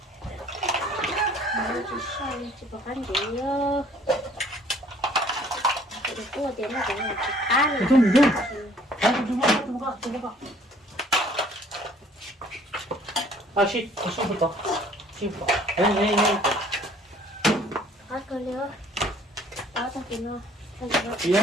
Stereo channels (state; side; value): normal; both; correlation 0.57